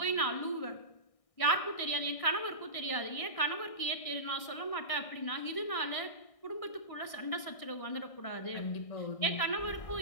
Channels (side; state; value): right; late; 1.6 ms